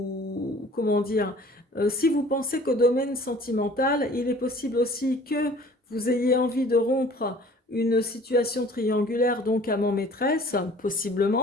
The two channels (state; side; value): normal; both; correlation 0.50